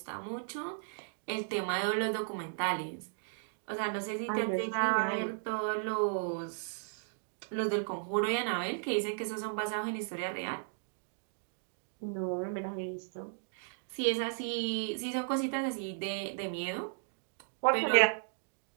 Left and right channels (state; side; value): silent; left; digital silence